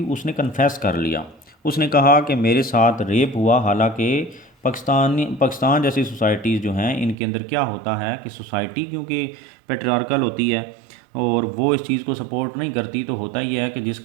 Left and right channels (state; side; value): drops out; left; at 7.2 s